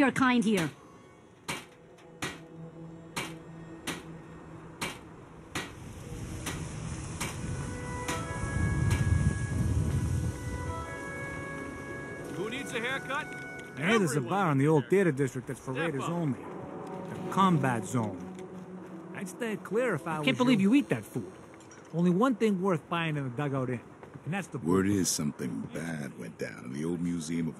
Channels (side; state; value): both; identical; correlation 1.00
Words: kind here. Who needs a haircut? I hear there's a bar in the old theater district that's for raiders only. The combat zone. I'd stay clear if I was. Can't believe you eat that food. Only one thing worth buying in the Dugout Inn, and that's the. Word is something bad went down in the old Museum